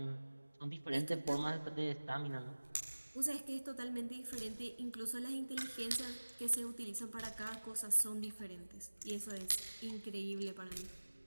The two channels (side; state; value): both; inverted; correlation -1.00